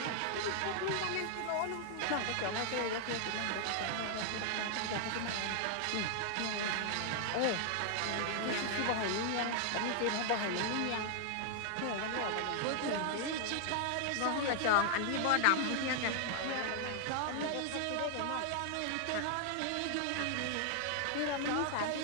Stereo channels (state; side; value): different; both; correlation 0.00